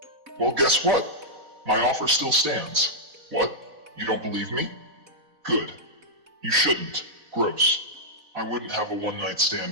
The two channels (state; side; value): late; left; 4.0 ms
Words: Well, guess what? My offer still stands. What? You don't believe me? Good. You shouldn't. Gross. I wouldn't have a one-night